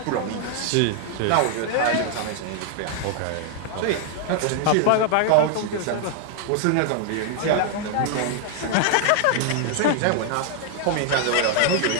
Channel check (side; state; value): both; different; correlation 0.00